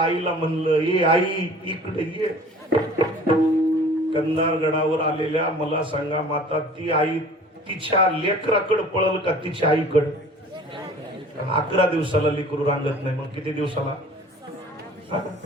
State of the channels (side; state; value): both; normal; correlation 0.47